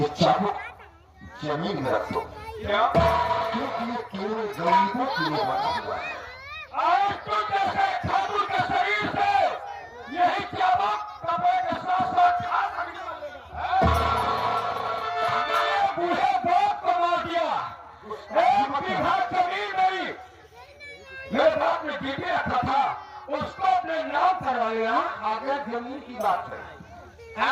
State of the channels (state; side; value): identical; both; correlation 1.00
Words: चाबुक जमीन में रख दो, क्या? क्योंकि ये केवल गरीबों के लिए बना हुआ है। आज तो जैसे ठाकुर के शरीर से यही चाबुक कपड़े के साथ साथ खास निकलेगा। मैंने बूढ़े बाप को मार दिया। 1 बीघा जमीन मेरे बाप ने गिरवी रखा था, उसको अपने नाम करवा लिया। आगे जमीन की बात है,